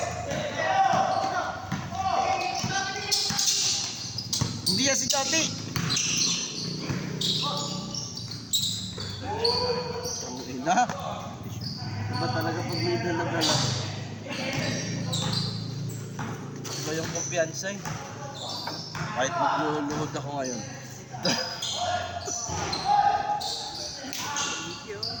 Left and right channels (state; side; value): identical; both; correlation 1.00